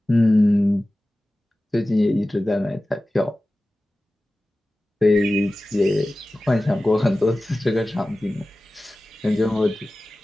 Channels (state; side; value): normal; both; correlation 0.96